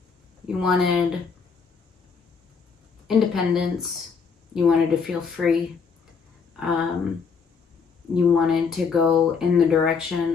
You wanted independence. You wanted to feel free. You wanted to go in the direction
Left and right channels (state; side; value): quieter; right; 5.6 dB